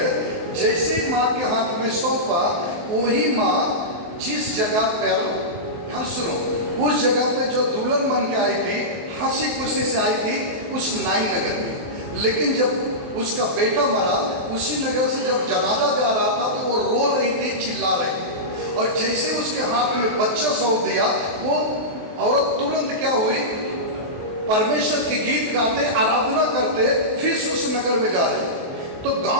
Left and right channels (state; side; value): late; left; 23 ms